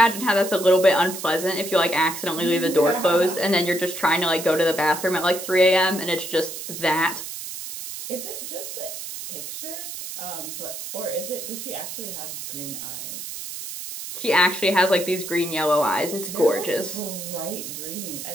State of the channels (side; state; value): right; noise; hiss, 8 dB below the sound